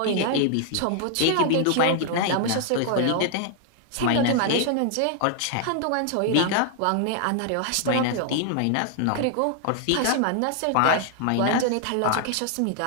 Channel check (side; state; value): both; different; correlation 0.00